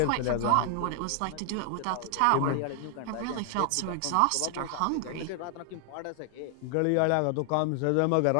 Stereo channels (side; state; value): both; different; correlation 0.00